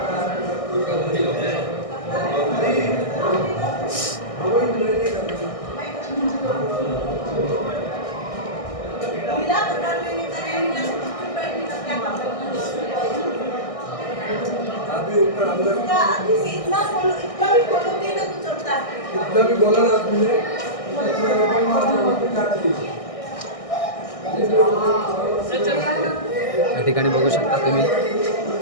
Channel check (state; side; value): late; right; 1.6 ms